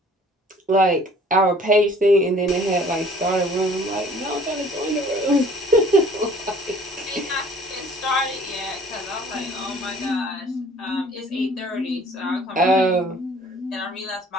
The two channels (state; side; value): normal; both; correlation 0.54